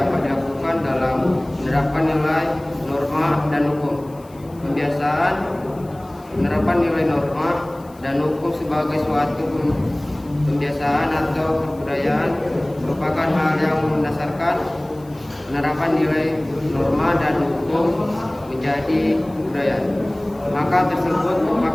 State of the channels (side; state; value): left; noise; hiss, 28 dB below the sound